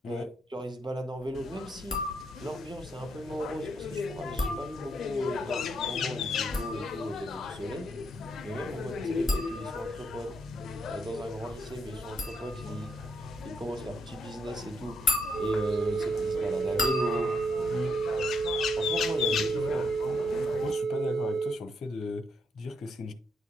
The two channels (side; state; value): both; normal; correlation 0.75